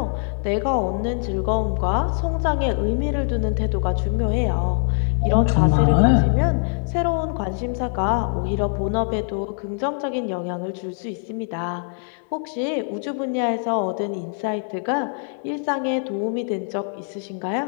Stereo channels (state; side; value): silent; right; 63 dB below the other